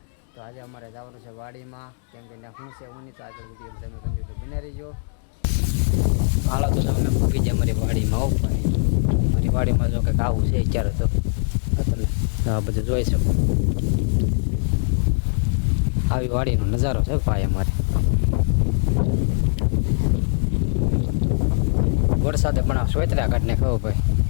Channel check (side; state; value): right; silent; 64 dB below the other